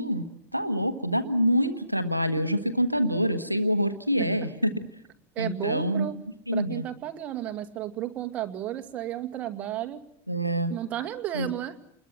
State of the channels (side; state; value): both; inverted; correlation -0.65